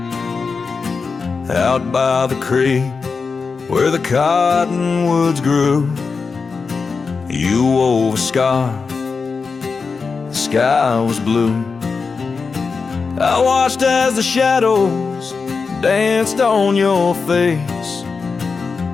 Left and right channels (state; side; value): quieter; right; 4.9 dB